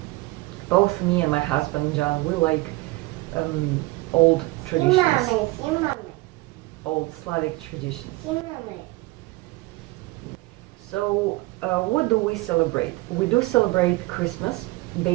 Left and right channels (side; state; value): left; quieter; 21.5 dB